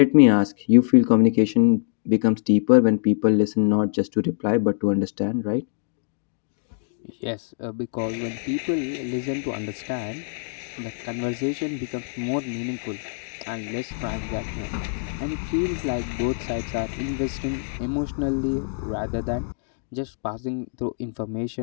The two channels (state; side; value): silent; right; digital silence